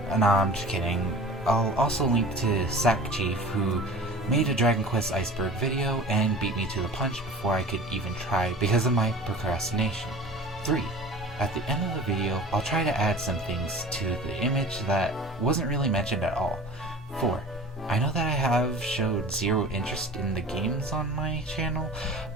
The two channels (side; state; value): both; normal; correlation 0.40